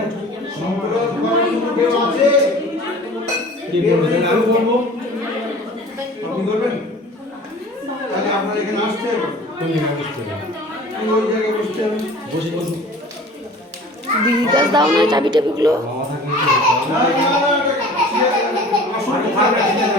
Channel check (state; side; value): normal; both; correlation 0.44